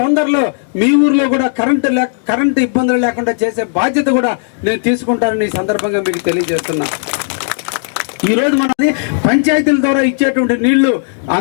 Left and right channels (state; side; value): silent; right; digital silence